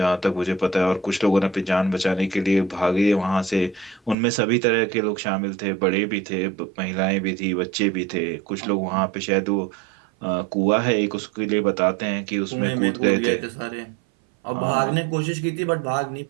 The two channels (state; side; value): drops out; left; at 4.2 s